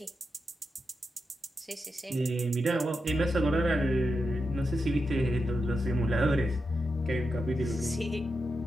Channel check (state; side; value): normal; both; correlation 0.88